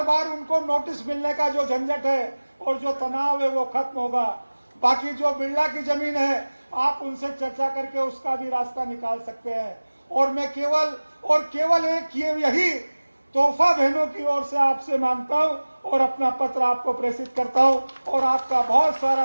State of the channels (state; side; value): inverted; both; correlation -1.00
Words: बार उनको नोटिस मिलने का जो झंझट है और जो तनाव है वो खत्म होगा। बाकी जो बिरला की जमीन है आप उनसे चर्चा करके उसका भी रास्ता निकाल सकते हैं। और मैं केवल एक यही तोहफा बहनों की ओर से आपसे मांगता हूं और अपना पत्र आपको प्रेषित करता हूं और आपका बहुत